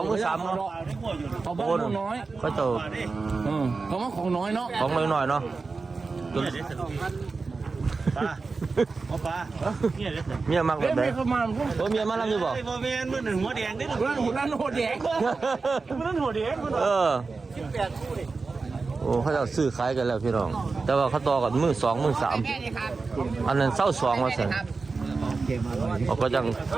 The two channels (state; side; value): quieter; left; 4.2 dB